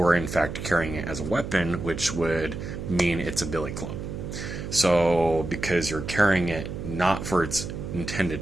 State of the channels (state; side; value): noise; right; hum, 7 dB below the sound